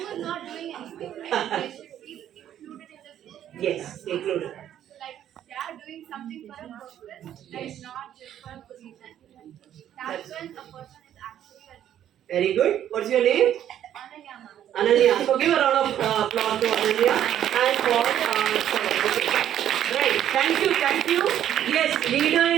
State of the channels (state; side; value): quieter; left; 10.9 dB